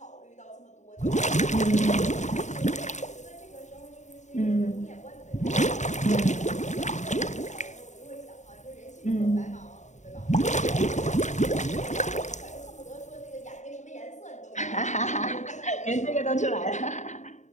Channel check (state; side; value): late; right; 0.34 ms